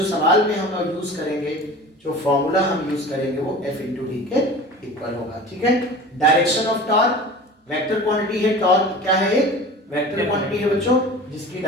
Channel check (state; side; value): normal; both; correlation 0.38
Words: सवाल में हम यूज करेंगे, जो फॉर्मूला हम यूज करेंगे वो F into D के इक्वल होगा, ठीक है। Direction of torque, vector quantity है टॉर्क, क्या है? एक वेक्टर क्वांटिटी है बच्चों जिसकी